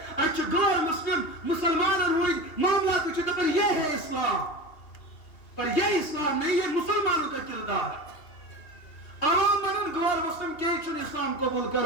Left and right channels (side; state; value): right; late; 2.8 ms